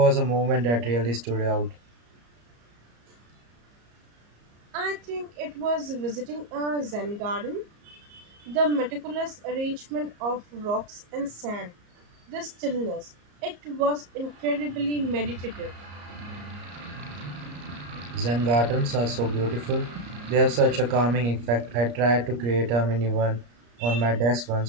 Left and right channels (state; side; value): late; left; 34 ms